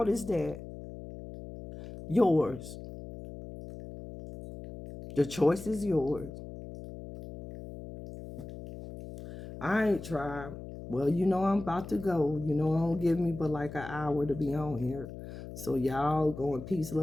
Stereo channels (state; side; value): noise; left; hum, 12 dB below the sound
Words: is that? Yours. The choice is yours. I ain't tried. Well, you know I'm about to go. You know, it don't give me but like an hour to be on here. So y'all go in peace,